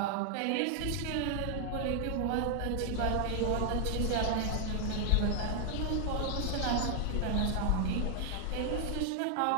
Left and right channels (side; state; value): both; different; correlation 0.00